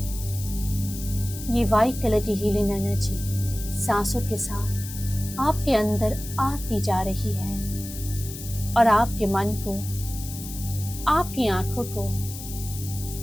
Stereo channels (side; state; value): left; noise; hiss, 11 dB below the sound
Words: ये वाइट कलर की हीलिंग एनर्जी सांसों के साथ आपके अंदर आती जा रही है और आपके मन को, आपकी आंखों को,